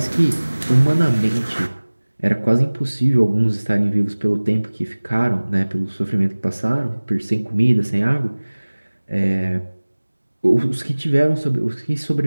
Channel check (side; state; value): both; inverted; correlation -1.00